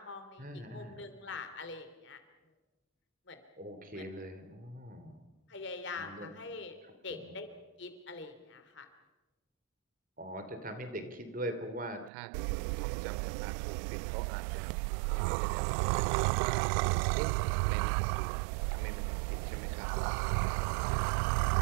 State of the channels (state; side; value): drops out; left; at 12.1 s